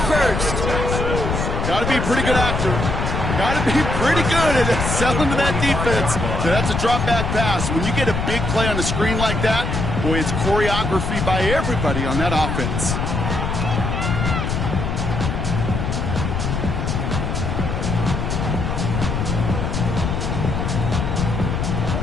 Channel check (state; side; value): noise; left; rumble, 1 dB below the sound